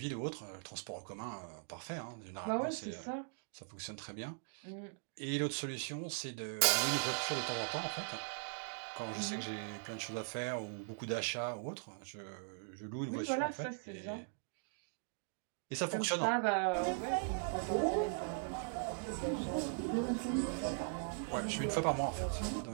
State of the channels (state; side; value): silent; left; digital silence